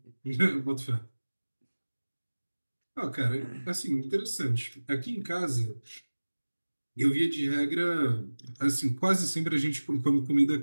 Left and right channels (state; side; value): inverted; both; correlation -1.00